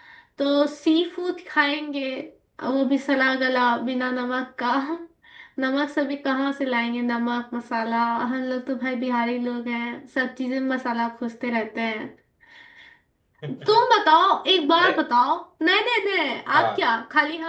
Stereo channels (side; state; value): both; identical; correlation 1.00